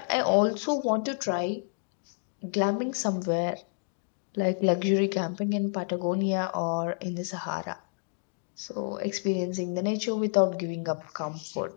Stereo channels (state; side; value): silent; right; 58 dB below the other